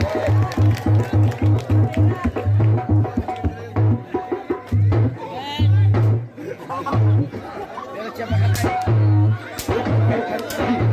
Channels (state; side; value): identical; both; correlation 1.00